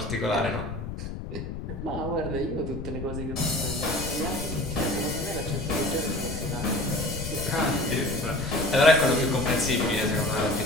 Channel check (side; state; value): left; noise; rumble, 7 dB below the sound